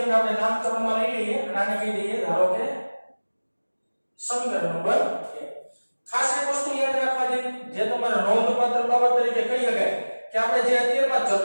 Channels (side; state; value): both; inverted; correlation -1.00